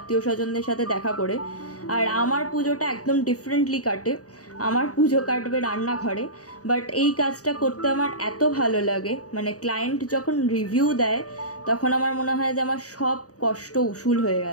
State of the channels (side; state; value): right; late; 0.66 ms